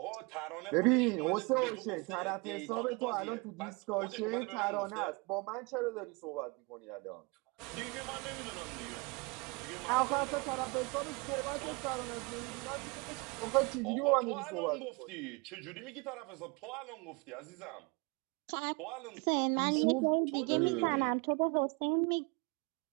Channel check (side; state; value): left; quieter; 28.4 dB